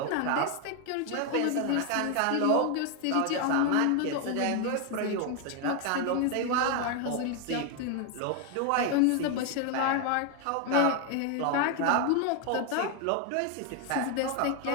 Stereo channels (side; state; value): both; different; correlation 0.01